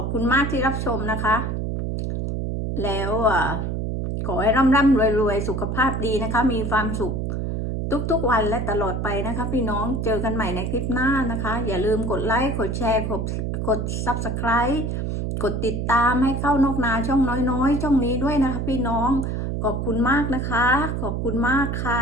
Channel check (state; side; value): noise; right; hum, 2 dB below the sound